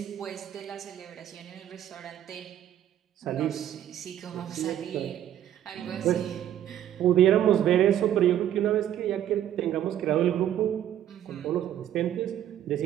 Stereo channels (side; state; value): left; quieter; 11.1 dB